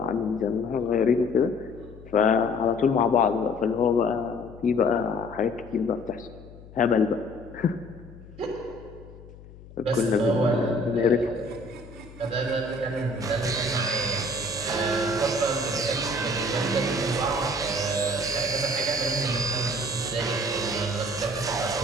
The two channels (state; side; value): noise; left; hum, 19 dB below the sound